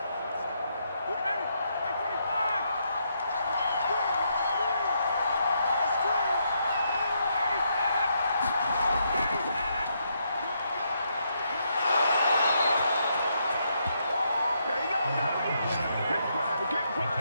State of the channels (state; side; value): inverted; both; correlation -0.77